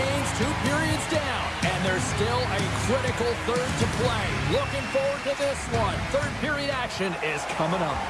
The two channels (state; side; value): identical; both; correlation 1.00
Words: 2 periods down. And there's still a critical third to play. Looking forward to this one. Third period action is coming up.